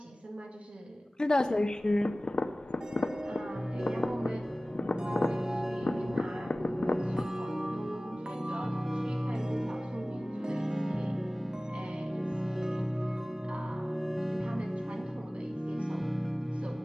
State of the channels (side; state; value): both; normal; correlation 0.98